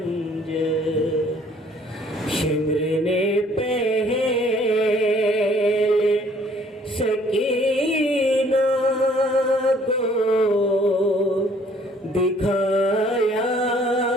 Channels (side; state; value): both; normal; correlation 0.59